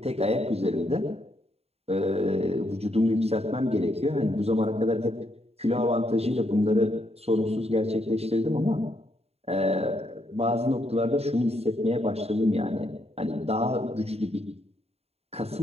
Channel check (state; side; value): late; left; 0.30 ms